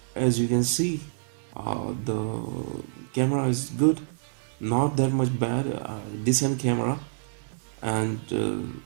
as you can see, the camera is good, not that much bad, decent camera. And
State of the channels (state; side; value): silent; left; digital silence